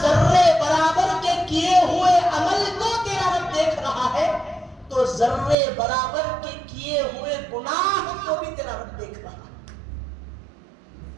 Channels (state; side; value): drops out; left; at 5.6 s